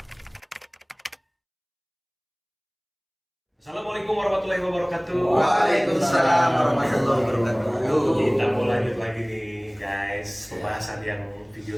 warahmatullahi wabarakatuh. Waalaikumsalam warahmatullahi wabarakatuh. Kita mau lanjut lagi nih guys, pembahasan yang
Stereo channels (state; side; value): identical; both; correlation 1.00